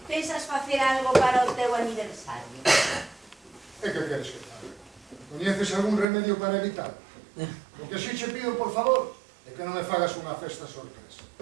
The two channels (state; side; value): drops out; left; at 6.1 s